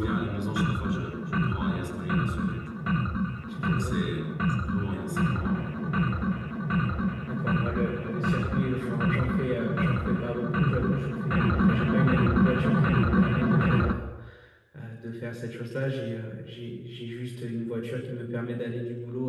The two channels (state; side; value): identical; both; correlation 1.00